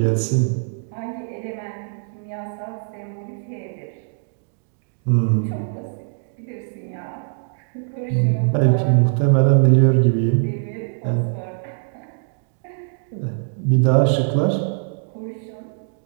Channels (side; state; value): left; silent; digital silence